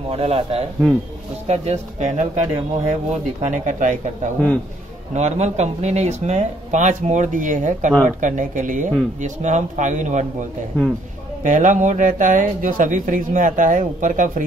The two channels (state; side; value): normal; both; correlation 0.66